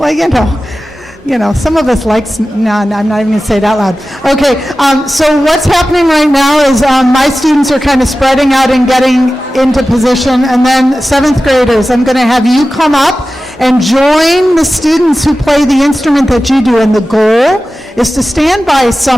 some of us like, no, I'm not even going to say it out loud. Okay, so what's happening right now is my students are kind of spreading out and getting into position, and then 7th graders, I'm going to have you come up and join the students who play the instrument that you do, and the goal is to stand by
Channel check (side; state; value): both; normal; correlation 0.95